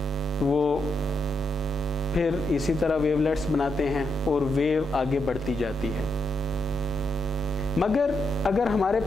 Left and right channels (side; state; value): both; normal; correlation 0.82